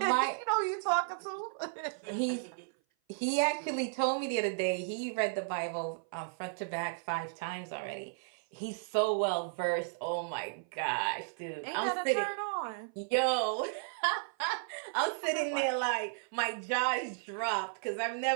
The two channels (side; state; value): left; silent; 55 dB below the other